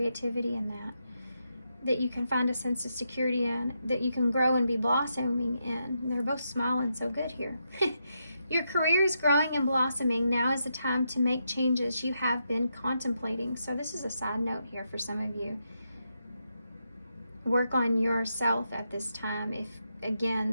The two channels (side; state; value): both; inverted; correlation -0.83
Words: in that you can find a sense of security in, that you can grow and be blossoming in. And they're both smiling so good here. Your career is growing and blossoming. Now is the time to make changes you have been contemplating. So this is a side note here for some of you. Work on yourself at this time if,